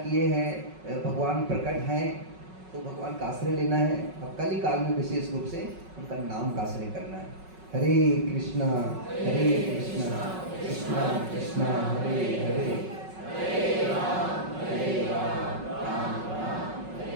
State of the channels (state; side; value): late; left; 5.4 ms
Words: हैं, भगवान प्रकट हैं, तो भगवान का आश्रय लेना है। अब कल ही काल में विशेष रूप से उनका नाम का आश्रय करना है। हरे कृष्णा कृष्णा कृष्णा हरे हरे,